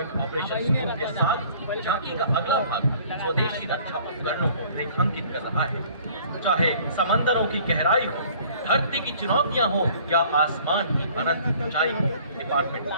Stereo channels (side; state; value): both; inverted; correlation -0.52